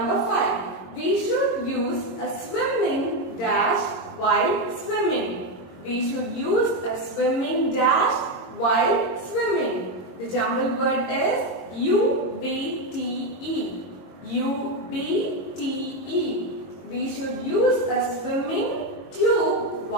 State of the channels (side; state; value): right; late; 22 ms